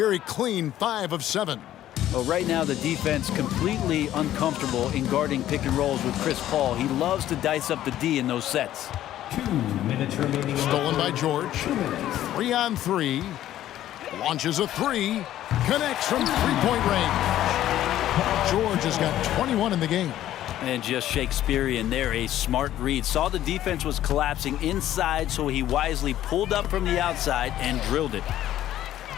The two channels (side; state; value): right; quieter; 12.8 dB